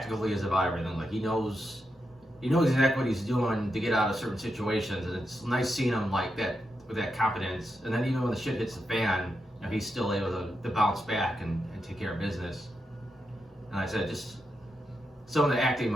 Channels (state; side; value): normal; both; correlation 0.86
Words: he is about everything. Like he knows exactly what he's doing to get out of certain situations, and it's nice seeing him like that with that confidence. And then even when the shit hits the fan, he's still able to bounce back and take care of business. And like I said, just some of the acting